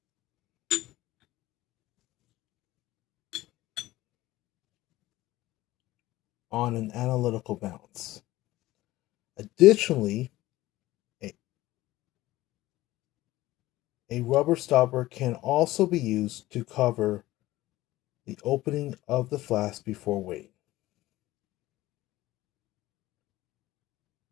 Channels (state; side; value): quieter; right; 17.0 dB